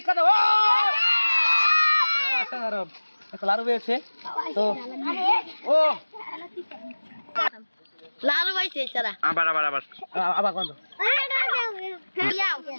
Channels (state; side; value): inverted; both; correlation -1.00